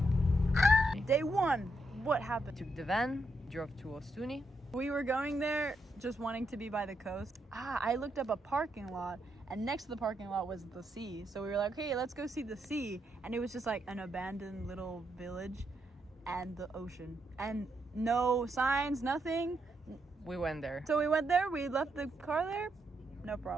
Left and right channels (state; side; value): normal; both; correlation 0.80